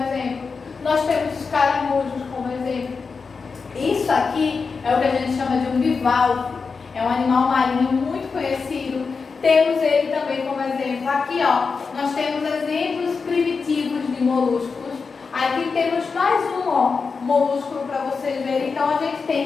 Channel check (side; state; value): right; quieter; 4.9 dB